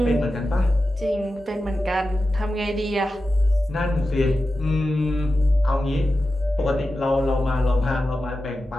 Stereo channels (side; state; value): both; normal; correlation 0.92